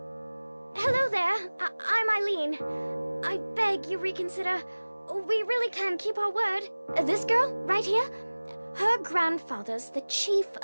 Hello there. I'm Eileen. I beg you reconsider. We really can keep our word. This girl, right here, her grandfather's the chief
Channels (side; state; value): both; inverted; correlation -1.00